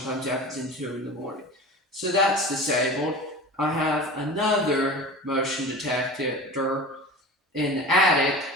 it happens in 2 in the morning. So that's disabled. I have another motion detector in the attic,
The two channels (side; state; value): both; normal; correlation 0.35